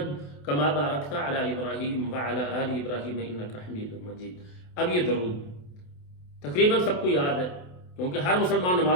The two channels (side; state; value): right; late; 28 ms